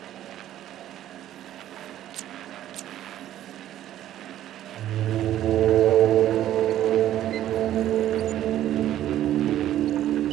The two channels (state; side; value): quieter; left; 12.4 dB